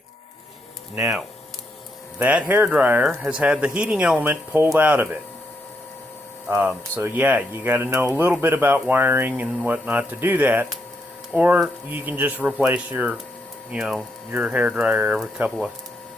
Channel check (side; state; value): both; normal; correlation 0.79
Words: Now, that hair dryer has had the heating element pulled out of it. So yeah, you got to know a little bit about wiring and whatnot to do that, or you can just replace your hair dryer every couple of